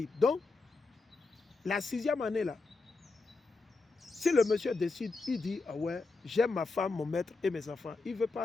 Donc, la 6e année là, si le monsieur décide, il dit: ah ouais, j'aime ma femme, mon maître et mes enfants. Il ne veut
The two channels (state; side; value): quieter; right; 3.8 dB